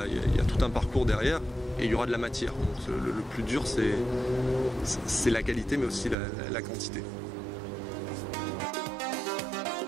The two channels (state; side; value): drops out; left; at 6.2 s